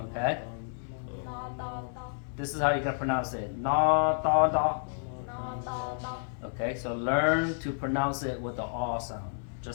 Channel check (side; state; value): right; silent; 57 dB below the other